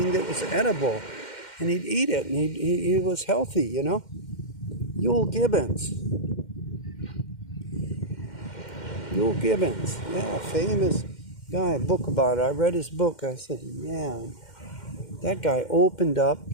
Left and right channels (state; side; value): late; right; 2.1 ms